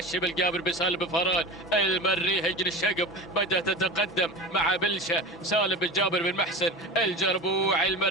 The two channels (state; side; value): normal; both; correlation 0.30